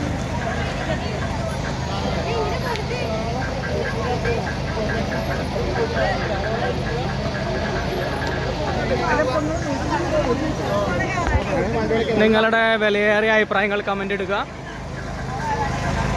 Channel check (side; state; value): both; identical; correlation 1.00